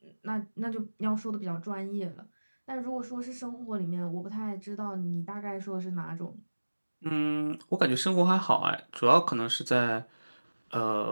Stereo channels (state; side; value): inverted; both; correlation -1.00